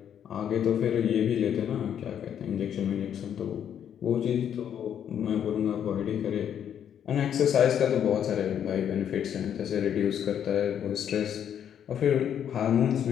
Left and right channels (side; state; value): right; quieter; 9.2 dB